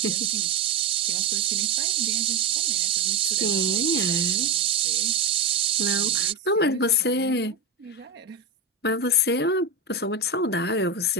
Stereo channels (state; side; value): quieter; left; 3.5 dB